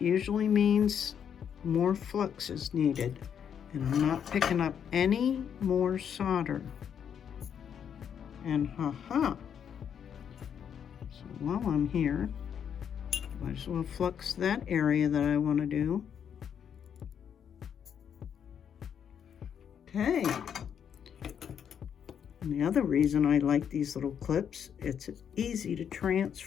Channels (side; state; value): right; quieter; 8.2 dB